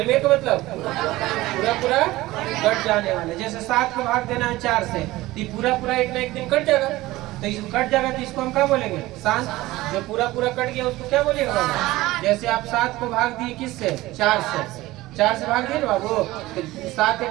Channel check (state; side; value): quieter; left; 18.1 dB